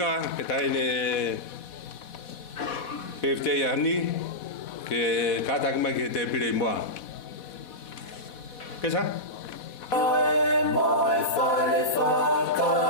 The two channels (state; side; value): late; right; 4.1 ms